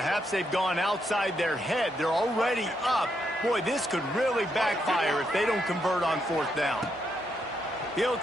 they've gone outside their head. They're already up. Boy, this could really backfire if they don't convert on 4th down. He'll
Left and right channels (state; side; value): normal; both; correlation 0.79